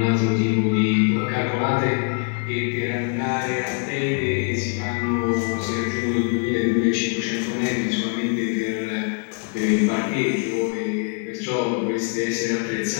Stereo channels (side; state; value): right; quieter; 39.6 dB